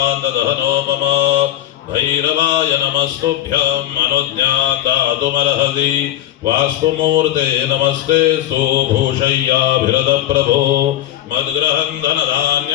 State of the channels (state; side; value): quieter; right; 12.8 dB